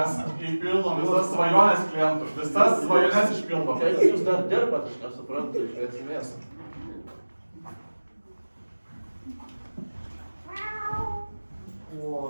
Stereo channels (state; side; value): inverted; both; correlation -1.00